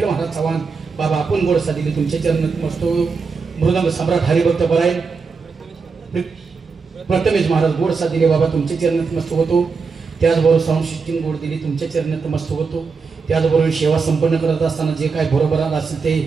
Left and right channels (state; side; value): quieter; left; 5.0 dB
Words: महाराज चव्हाण बाबा आपण गोड साथ दिली तुमच्या चरणी तमस होतो. मृदंग सम्राट हरिभक्त परायण प्रथमेश महाराज गोड साथ दिले बाबा तुमच्या चरणी नतमस्तक होतो. त्याचबरोबर साऊंड सिस्टीम गोड दिली तुमच्या चरणी नतमस्तक होतो. त्याचबरोबर सेवा संपन्न करत असताना जे काय बरोबर असेल